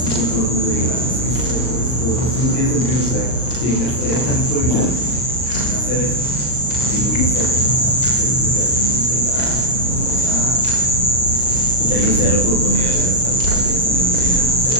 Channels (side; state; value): right; late; 39 ms